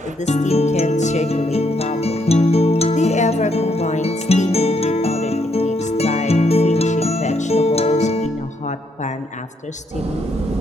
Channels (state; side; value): normal; both; correlation 0.74